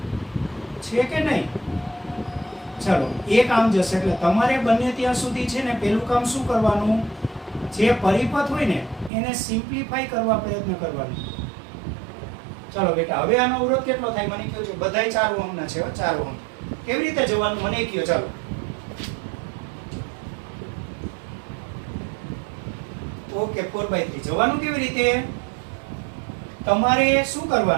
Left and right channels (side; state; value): left; drops out; at 9.1 s